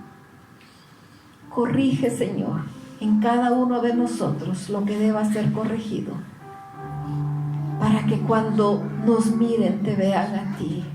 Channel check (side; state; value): both; identical; correlation 1.00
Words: Corrige, Señor, en cada uno de nosotros lo que deba ser corregido, para que cuando nos miren te vean a ti,